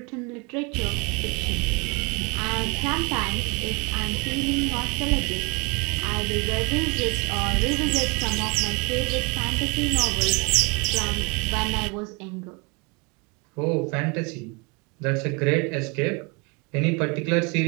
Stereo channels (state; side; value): quieter; left; 29.2 dB